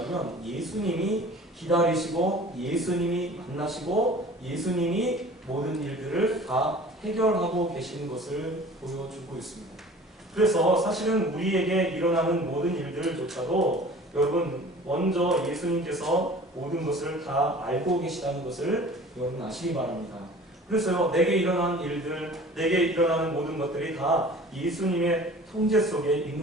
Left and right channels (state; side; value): normal; both; correlation 0.45